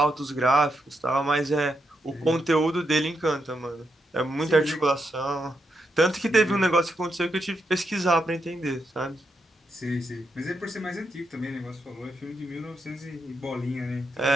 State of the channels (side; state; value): both; normal; correlation 0.82